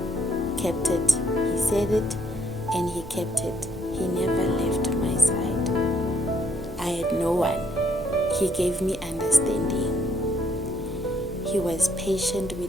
kept it. He said it, and He kept it. He never left my side. I had no one. He gave me understanding. He was patient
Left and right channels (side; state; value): left; noise; rumble, 20 dB below the sound